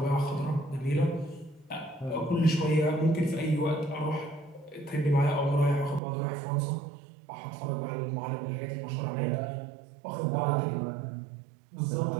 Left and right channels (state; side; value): drops out; left; at 6.0 s